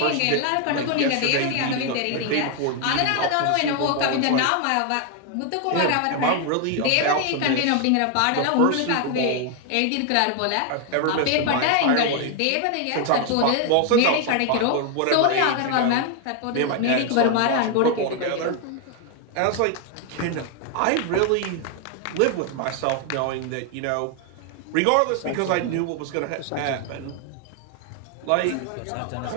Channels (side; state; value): both; different; correlation 0.01